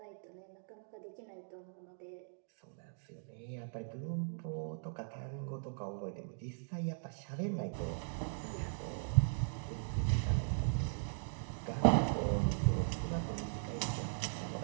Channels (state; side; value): silent; left; digital silence